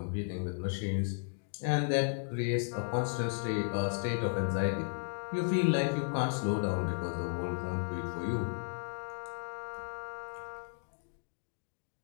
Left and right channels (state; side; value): silent; right; digital silence